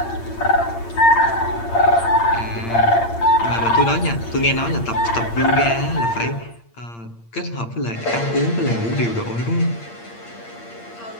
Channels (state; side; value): late; right; 8.7 ms